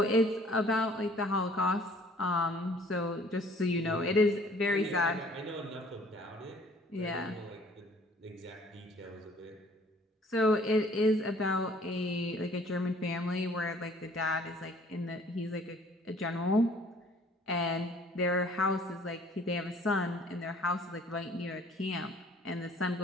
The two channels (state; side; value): normal; both; correlation 0.55